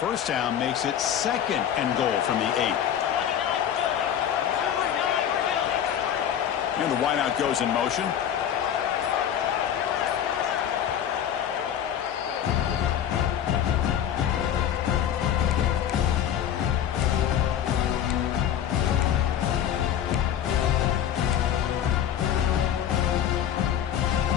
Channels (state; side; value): quieter; right; 9.8 dB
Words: down makes it 2nd and goal from the 8. And the wideout goes in motion.